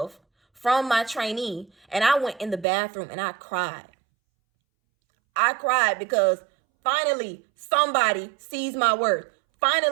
from my trainee. And I went in the bathroom and I cried. I cried because finally somebody sees my worth.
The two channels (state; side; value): drops out; left; at 2.7 s